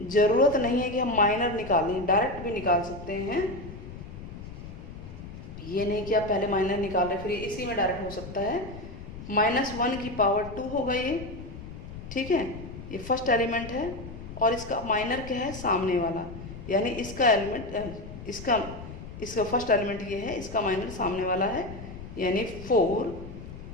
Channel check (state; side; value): noise; left; rumble, 12 dB below the sound